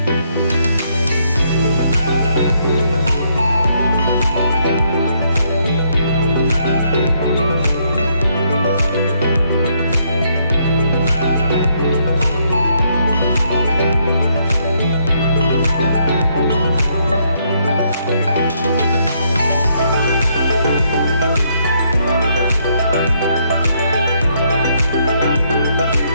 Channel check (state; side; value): inverted; both; correlation -0.72